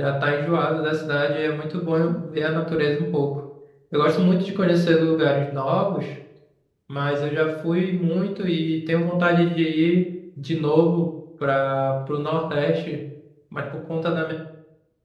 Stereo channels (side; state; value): both; identical; correlation 1.00